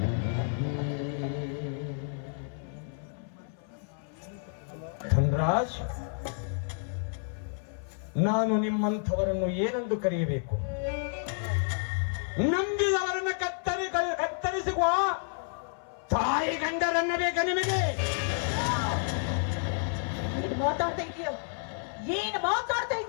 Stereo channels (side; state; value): right; silent; 58 dB below the other